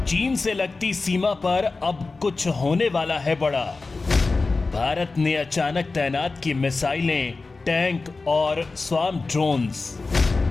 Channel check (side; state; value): right; quieter; 3.8 dB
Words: चीन से लगती सीमा पर अब कुछ होने वाला है बड़ा। भारत ने अचानक तैनात की मिसाइलें, टैंक और स्वार्म ड्रोन्स।